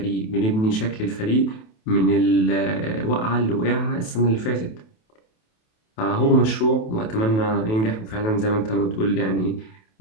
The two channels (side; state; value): right; late; 28 ms